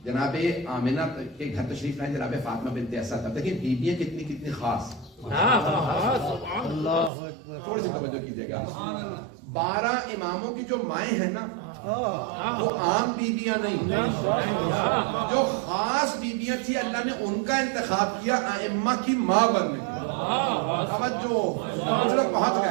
جناب آمنہ کے گھر تشریف لائے جناب فاطمہ بنت اسد. اب دیکھیں بیویاں کتنی خاص. تھوڑی سی توجہ کیجیے گا. 12 اماموں کی جو مائیں ہیں نا وہ عام بیویاں نہیں، جو خاص بیویاں تھی اللہ نے ان کا انتخاب کیا ائمہ کی ماں بننے کے. توجہ، کچھ لوگ پہنچ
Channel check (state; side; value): drops out; left; at 7.1 s